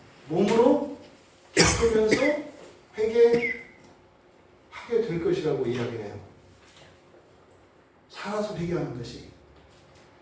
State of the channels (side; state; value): both; identical; correlation 1.00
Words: 몸으로 겪으면서 회개하게 될 것이라고 이야기해요. 살아서 회개하는 것이.